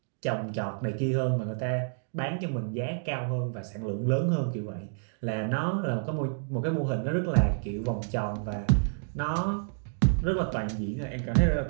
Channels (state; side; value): silent; left; digital silence